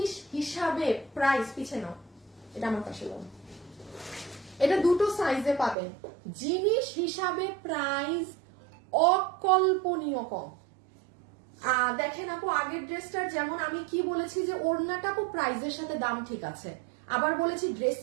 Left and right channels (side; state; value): left; drops out; at 5.8 s